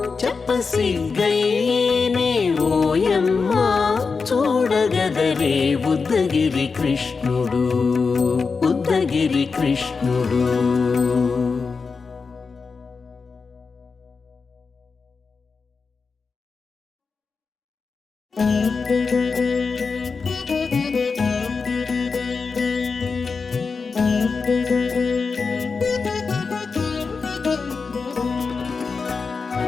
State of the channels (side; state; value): right; quieter; 4.8 dB